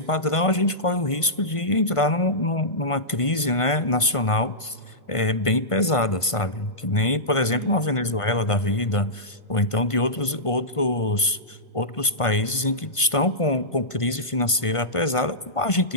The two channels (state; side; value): late; right; 1.5 ms